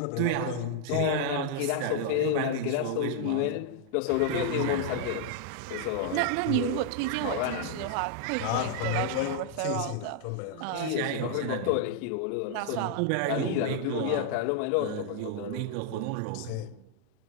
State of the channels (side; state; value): both; different; correlation -0.01